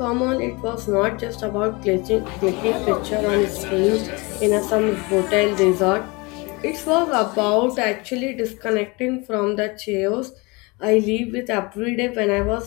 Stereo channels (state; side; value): quieter; right; 26.6 dB